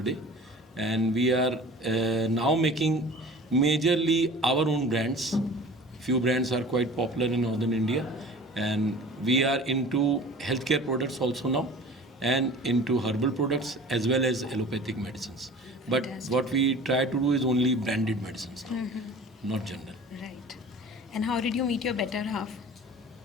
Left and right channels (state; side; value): normal; both; correlation 0.42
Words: And we are now making majorly our own brands. Few brands are quite popular in northern India, and we are into healthcare products also now, and into herbal products as well as allopathic medicines. But Fantastic. what we try to do is only branded medicines now, not general. Right. And how did you meet your better half?